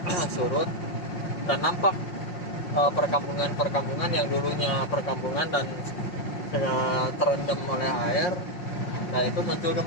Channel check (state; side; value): late; right; 5.6 ms